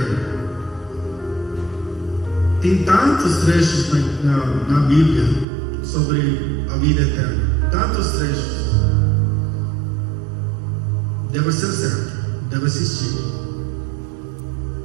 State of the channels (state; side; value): drops out; left; at 5.5 s